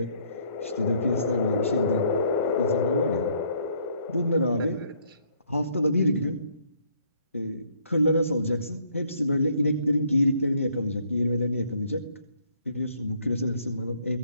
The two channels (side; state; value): both; inverted; correlation -0.66